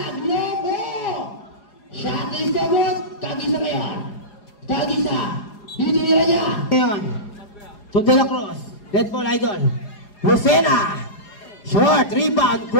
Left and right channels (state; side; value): late; right; 4.8 ms